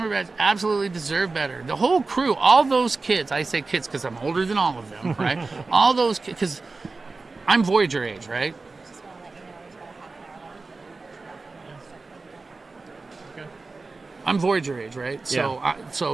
absolutely deserved better. The whole crew, all those kids, I say kids because I'm older than all of them, right? All those kids, because I'm Voyager age, right? I'm Voyager age, right? So,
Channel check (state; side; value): quieter; left; 3.8 dB